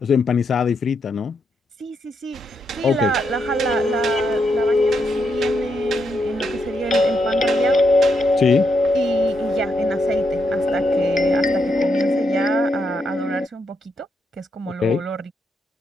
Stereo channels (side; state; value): both; normal; correlation 0.80